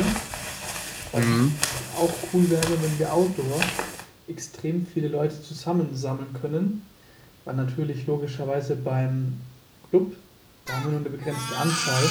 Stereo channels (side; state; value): both; identical; correlation 1.00